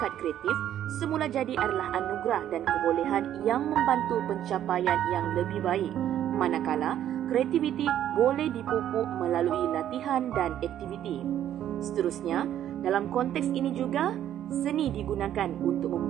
kreatif semula jadi adalah anugerah dan kebolehan yang membantu pencapaian yang lebih baik. Manakala, kreativiti boleh dipupuk melalui latihan dan aktiviti. Seterusnya, dalam konteks ini juga, seni digunakan untuk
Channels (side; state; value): left; quieter; 11.1 dB